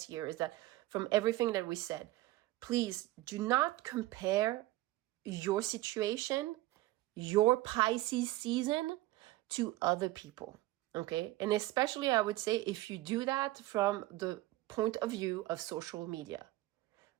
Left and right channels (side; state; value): left; quieter; 17.6 dB